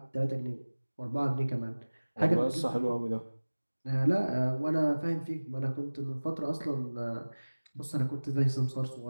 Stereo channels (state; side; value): inverted; both; correlation -1.00